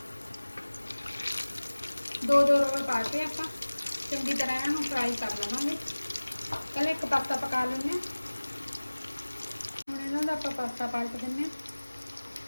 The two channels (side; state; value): both; inverted; correlation -1.00